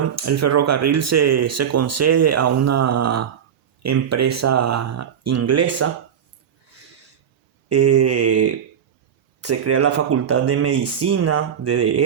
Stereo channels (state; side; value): quieter; left; 8.4 dB